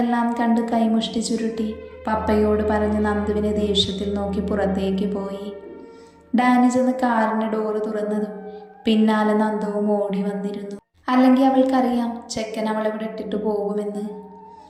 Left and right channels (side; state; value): both; identical; correlation 1.00